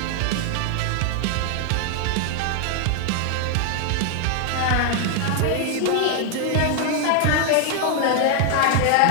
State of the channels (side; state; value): both; different; correlation 0.00